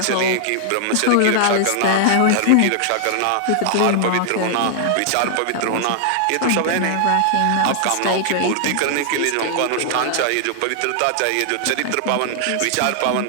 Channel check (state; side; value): different; both; correlation -0.01